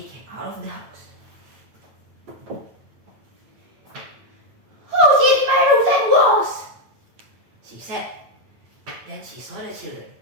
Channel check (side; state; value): left; late; 9.0 ms